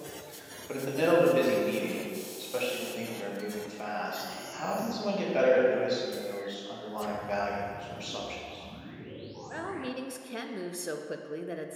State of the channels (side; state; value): both; identical; correlation 1.00